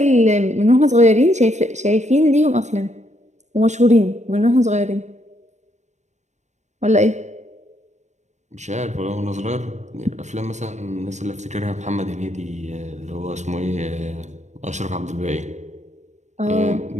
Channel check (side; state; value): left; late; 0.34 ms